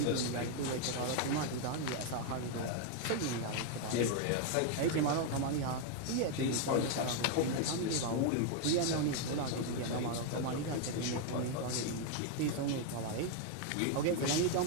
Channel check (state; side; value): different; both; correlation 0.01